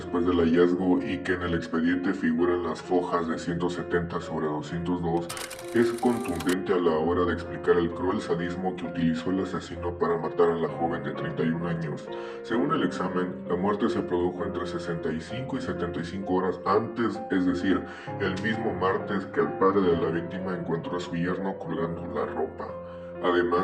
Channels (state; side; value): identical; both; correlation 1.00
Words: del hallazgo y que en el expediente figuran las fojas de 170 sobre 202, es contundente a la hora de explicar el cruel sadismo que utilizó el asesino para matar a la joven de 31 años. Según el examen, la muerte se produjo entre 65 y 75 horas antes, es decir, el mismo martes que el padre de la víctima encontró a su yerno colgando la ropa.